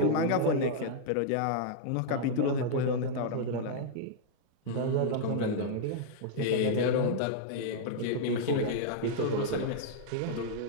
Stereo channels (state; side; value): different; both; correlation -0.01